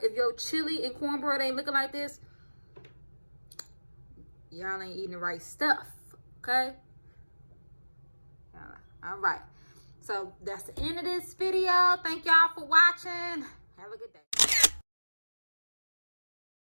chili and cornbread ain't looking like this, y'all ain't eating the right stuff, okay? All right. So that's the end of this video. Thank y'all for watching. Have a good day.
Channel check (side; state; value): both; inverted; correlation -1.00